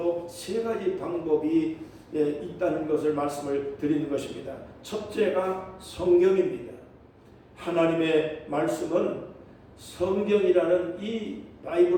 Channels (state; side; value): identical; both; correlation 1.00